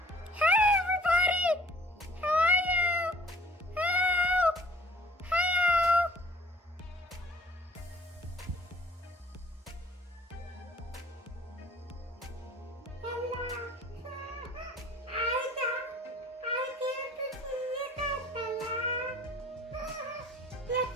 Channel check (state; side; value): normal; both; correlation 0.53